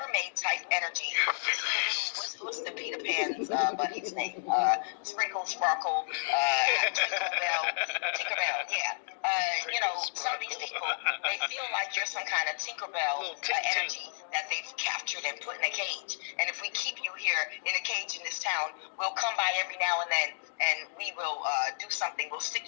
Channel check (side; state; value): right; silent; digital silence